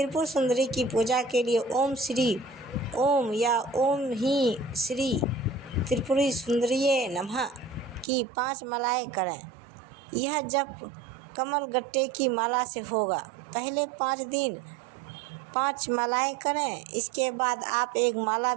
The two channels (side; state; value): left; drops out; at 8.1 s